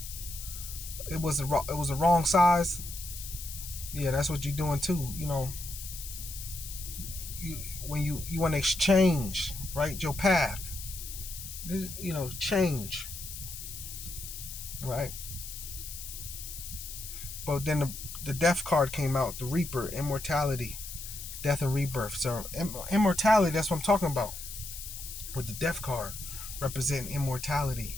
It was a wrong size. Yeah, that's what you're doing too. When you want to exchange, right, your path. Change, right? But then the death card came out, the Reaper, immortality, death and rebirth. So immortality, that's what I'm talking about. With the death card representing immortality,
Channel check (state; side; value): noise; left; hiss, 10 dB below the sound